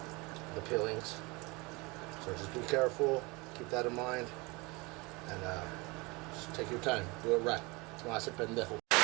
peelings. So just be careful, keep that in mind, and just take your time, do it right. No hace pendejo.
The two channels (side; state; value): left; quieter; 25.9 dB